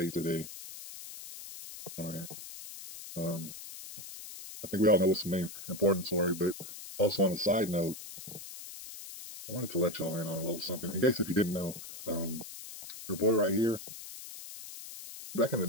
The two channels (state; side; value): noise; left; hiss, 12 dB below the sound